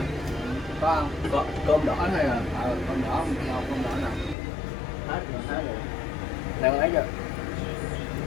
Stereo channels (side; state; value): right; drops out; at 4.4 s